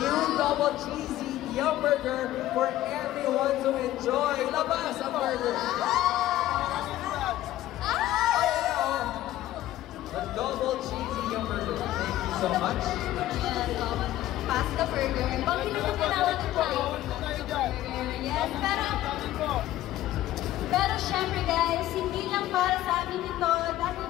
double cheesy Yum Burger for everyone to enjoy. Labas ang burger! The double cheesy Yum Burger. Thank you so much. Pasta burger. Bakit naman tinawag ito tayo? Yes, pero syempre guys, hindi lang para sa amin ito dahil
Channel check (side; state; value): right; quieter; 14.3 dB